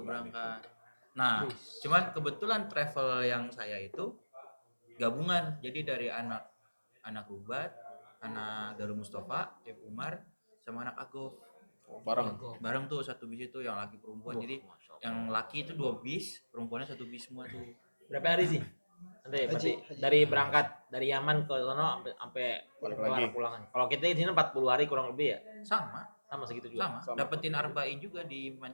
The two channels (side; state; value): both; inverted; correlation -1.00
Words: berangkat. Nah, cuman kebetulan travel yang saya itu gabungan. Jadi dari anak Rubat, anak Darul Mustafa, Ibu Umar, sama anak Agof. Bareng. Bareng tuh satu bis itu yang laki perempuan. Jadi yang laki itu 2 bis, perempuannya 1 bis semua tuh. Berapa hari sih? Nanti berarti Haji. dari berangkat dari Yaman ke sono sampai Balik kelar lagi. pulangan. Kalau kita di sini 40 hari kurang lebih ya. Sama, Sama segitu juga. sama. Dapetin arba'in juga di